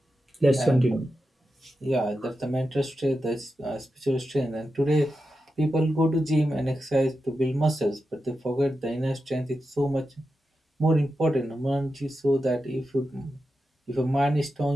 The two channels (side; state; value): both; normal; correlation 0.90